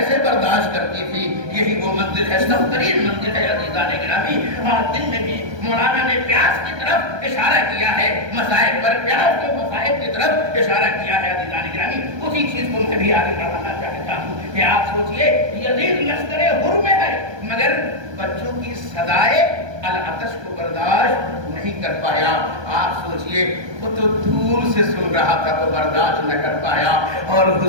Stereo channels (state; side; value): late; left; 1.2 ms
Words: برداشت کرتی تھی؟ یہی وہ منزل ہے، سب ترین منزل ہے عزیزان گرامی۔ آج دن میں بھی مولانا نے پیاس کی طرف اشارہ کیا ہے، مصائب پر پیاس کے مصائب کی طرف اشارہ کیا ہے عزیزان گرامی۔ اسی چیز کو میں بھی آگے بڑھانا چاہتا ہوں کہ آپ سوچئے یزید لشکر حر میں ہے مگر بچوں کی صدائے العطش کو برداشت نہیں کر پایا۔ آپ سوچئے وہ تو دور سے سن رہا تھا تو برداشت نہ کر پایا، اور